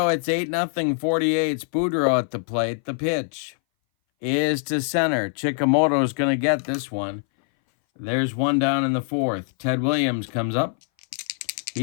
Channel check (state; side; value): silent; right; 60 dB below the other